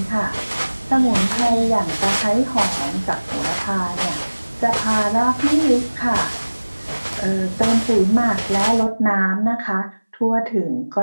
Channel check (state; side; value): inverted; both; correlation -1.00